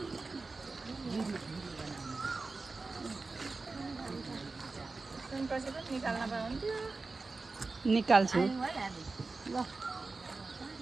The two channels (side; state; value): left; quieter; 3.8 dB